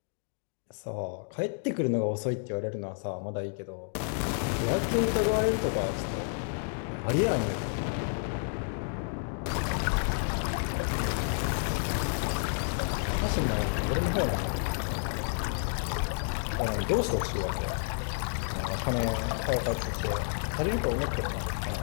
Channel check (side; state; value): right; silent; digital silence